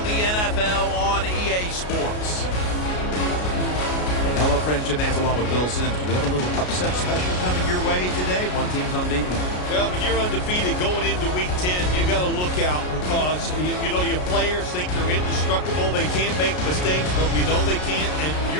the NFL on EA Sports. Hello, friends. Jim Nantz along with Bill Sims. Do we have a little upset special coming your way today? One team's unbeaten. Well, when you're undefeated going into Week 10, you got to look out because, you know, your players think they're indestructible. They can't make mistakes, but we know they can't. And when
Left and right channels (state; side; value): late; right; 33 ms